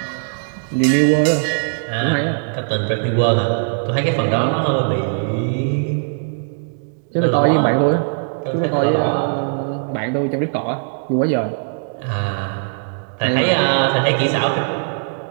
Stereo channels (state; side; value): silent; left; digital silence